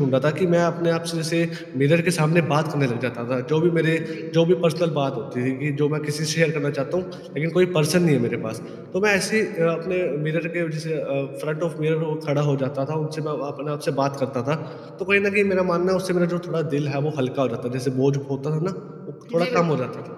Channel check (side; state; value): both; identical; correlation 1.00